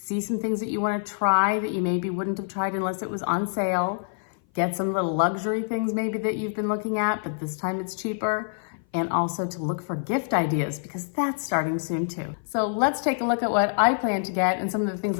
some things that you want to try that you maybe wouldn't have tried unless it was on sale, get some little luxury things maybe that you've been looking at, but this time it's cheaper, and also to look for gift ideas because that's starting soon too. So let's take a look at what I plan to get and some of the things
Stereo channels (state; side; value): silent; right; 57 dB below the other